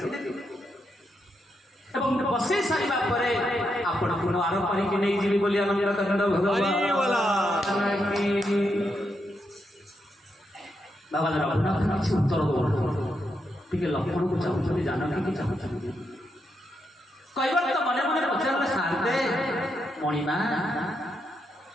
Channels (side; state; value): both; normal; correlation 0.82